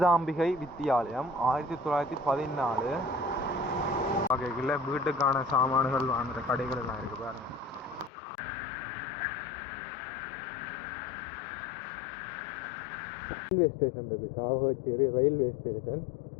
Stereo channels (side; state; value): right; drops out; at 8.1 s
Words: வித்தியாலயம் 1914. வகைகளில் வீட்டுக்கான சாமான்கள் வாங்குற கடைகள் எல்லாம் இருக்கு பாருங்க. ரயில்வே ஸ்டேஷன் இருக்குது, சாவகச்சேரி ரயில்வே ஸ்டேஷன்.